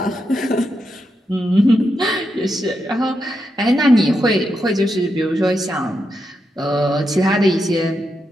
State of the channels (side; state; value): both; normal; correlation 0.84